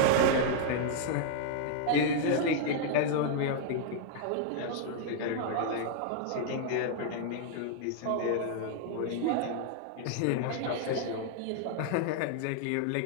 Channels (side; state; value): both; different; correlation 0.00